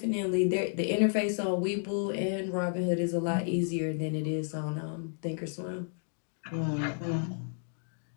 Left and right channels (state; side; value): silent; right; digital silence